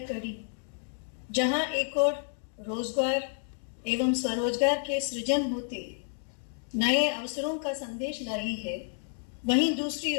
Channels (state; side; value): silent; right; digital silence